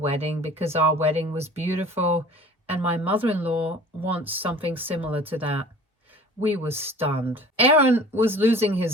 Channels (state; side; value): normal; both; correlation 0.45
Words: because our wedding was beautiful, and my mother-in-law wants something similar to that. We were stunned. Aaron was losing